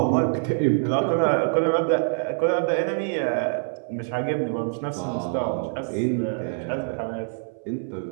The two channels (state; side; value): silent; left; 61 dB below the other